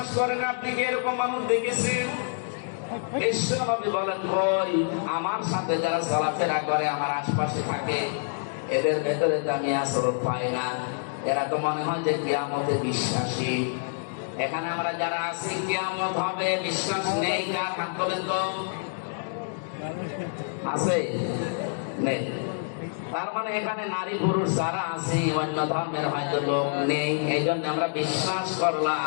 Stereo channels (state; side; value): silent; right; digital silence